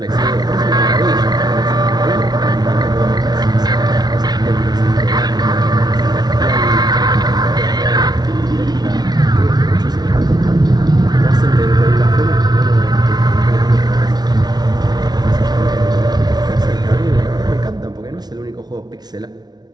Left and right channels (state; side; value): late; left; 0.19 ms